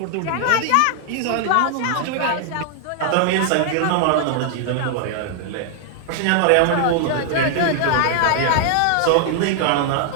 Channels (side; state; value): both; different; correlation 0.00